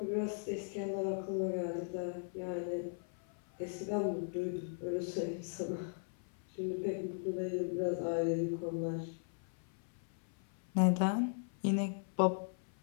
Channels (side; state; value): right; silent; 52 dB below the other